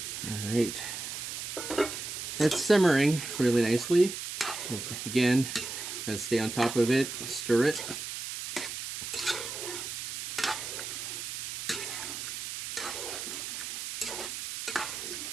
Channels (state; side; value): noise; right; hiss, 6 dB below the sound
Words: All right, it's simmering really nicely. Again, gotta stay on top of it, stir it.